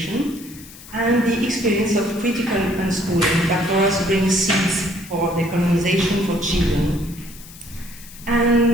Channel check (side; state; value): left; noise; hiss, 18 dB below the sound